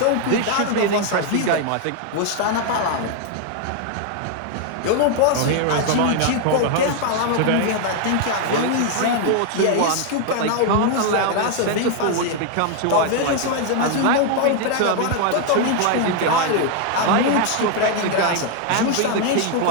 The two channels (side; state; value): both; different; correlation 0.00